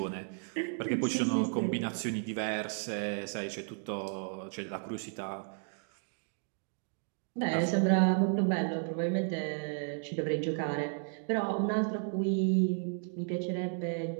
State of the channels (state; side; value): silent; left; 55 dB below the other